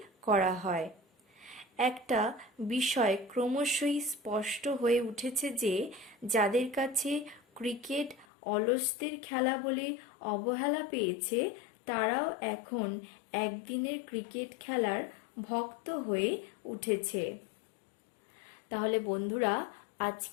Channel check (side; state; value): right; drops out; at 8.2 s